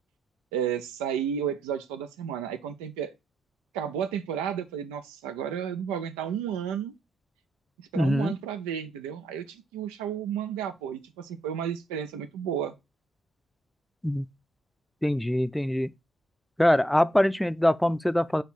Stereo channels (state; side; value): normal; both; correlation 0.79